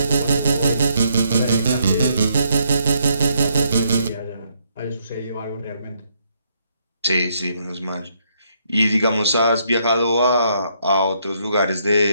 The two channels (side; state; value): both; inverted; correlation -0.74